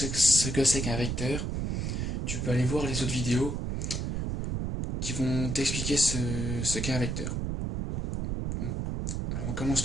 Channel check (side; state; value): right; noise; rumble, 1 dB below the sound